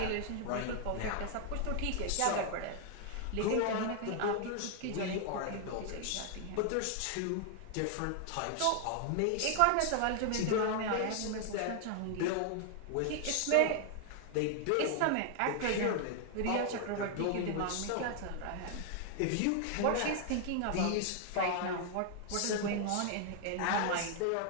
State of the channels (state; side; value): different; both; correlation 0.00